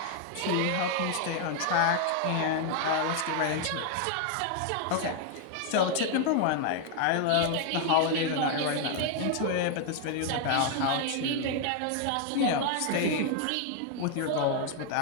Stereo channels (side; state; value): both; different; correlation 0.00